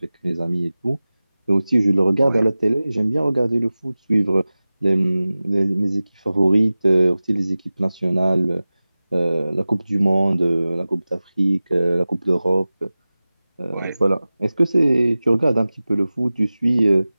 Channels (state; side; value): inverted; both; correlation -0.97